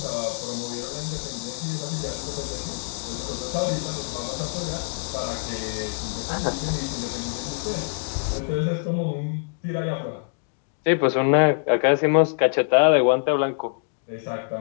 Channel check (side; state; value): right; silent; digital silence